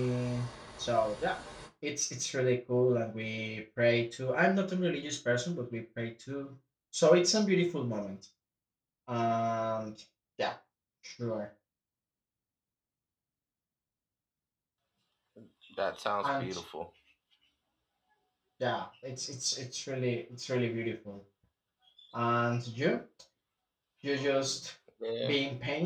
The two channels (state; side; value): identical; both; correlation 1.00